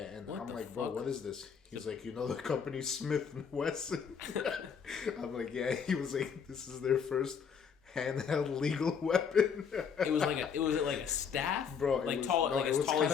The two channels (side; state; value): right; quieter; 6.7 dB